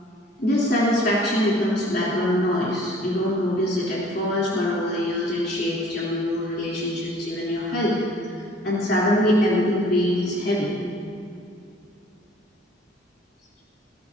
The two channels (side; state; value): both; normal; correlation 0.53